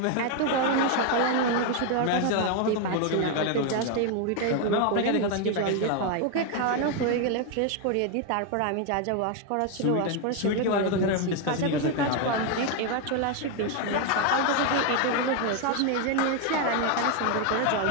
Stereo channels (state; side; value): different; both; correlation 0.01